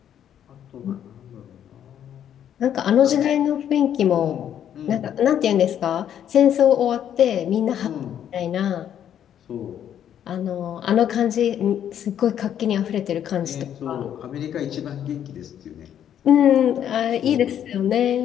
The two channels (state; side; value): quieter; right; 9.9 dB